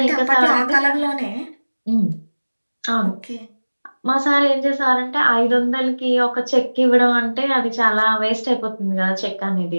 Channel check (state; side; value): inverted; both; correlation -1.00